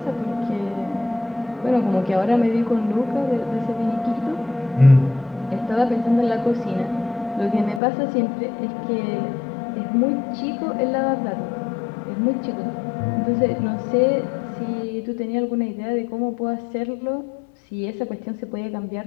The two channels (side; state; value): right; drops out; at 7.8 s